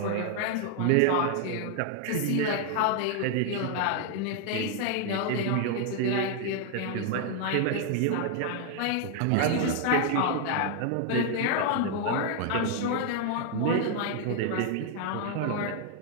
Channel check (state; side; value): different; both; correlation 0.00